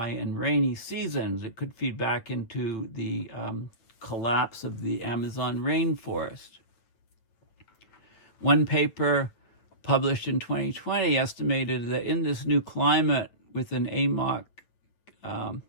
and rainy seasons. It could feed back into the collapse of the Amazon rainforest. One paper published in 2020 estimated that in this new climate with an AMOC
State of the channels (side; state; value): right; late; 8.9 ms